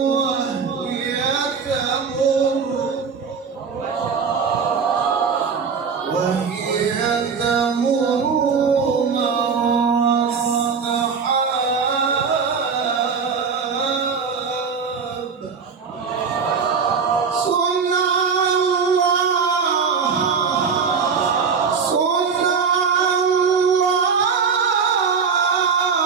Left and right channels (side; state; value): left; quieter; 5.8 dB